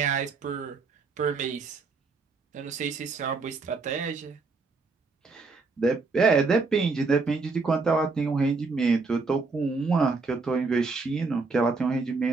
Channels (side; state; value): left; quieter; 4.2 dB